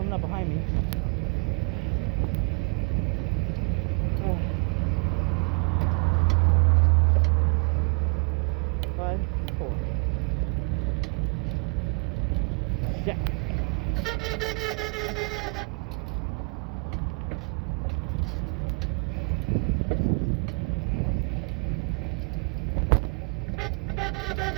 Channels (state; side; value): quieter; left; 37.5 dB